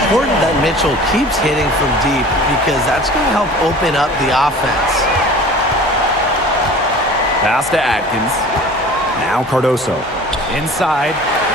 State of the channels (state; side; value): normal; both; correlation 0.43